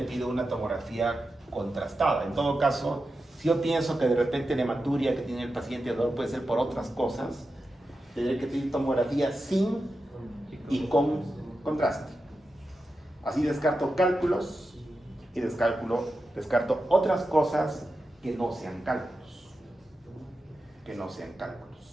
pido una tomografía contrastada. En todo caso, si yo pienso que de repente la hematuria que tiene el paciente dolor puede ser por otras cosas, tendré que pedir tomografía sin y con contraste. Así descarto cálculos y descarto otras cosas que no sean cálculos.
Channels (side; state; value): both; normal; correlation 0.90